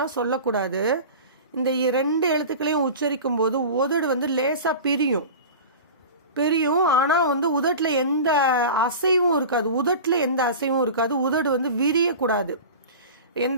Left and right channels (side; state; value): both; inverted; correlation -0.34